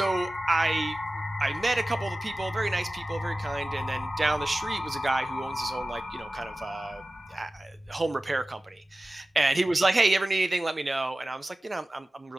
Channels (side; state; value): both; normal; correlation 0.96